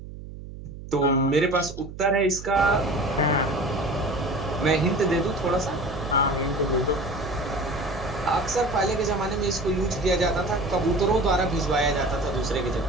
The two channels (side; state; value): right; noise; hum, 13 dB below the sound